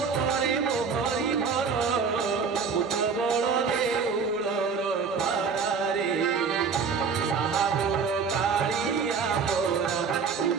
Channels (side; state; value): left; quieter; 5.6 dB